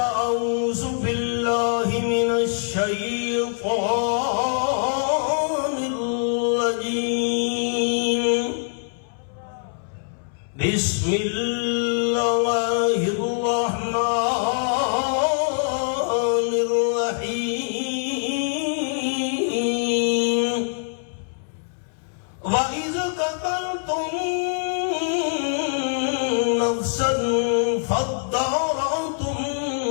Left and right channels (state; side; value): silent; right; 63 dB below the other